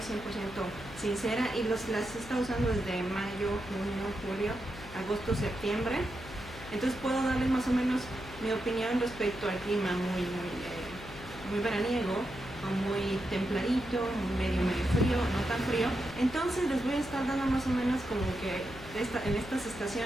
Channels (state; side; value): noise; left; hum, 16 dB below the sound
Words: sincera, y las he estado usando desde mayo, junio, julio, agosto, septiembre. Entonces puedo darles más o menos mi opinión respecto al clima muy veraniego, o muy templadito, medio frío, no tan frío. Entonces les voy a estar dando más o menos como que en estas